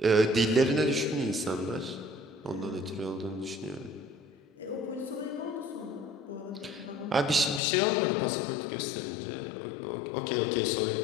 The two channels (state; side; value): drops out; right; at 7.6 s